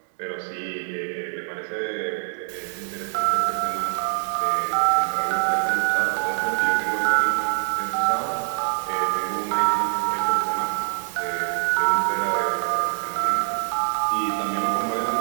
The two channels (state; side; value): silent; left; digital silence